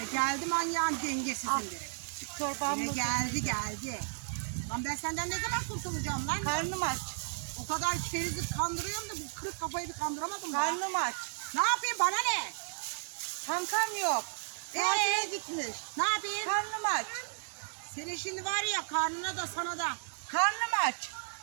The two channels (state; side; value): silent; left; digital silence